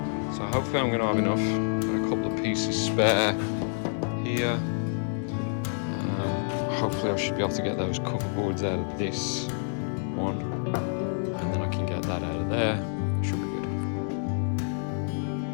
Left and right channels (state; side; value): silent; right; 59 dB below the other